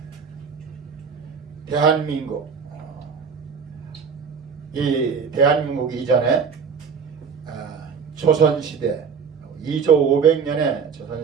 대한민국, 이 대한민국 이전에 조선시대 2조 500년의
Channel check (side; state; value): left; quieter; 6.2 dB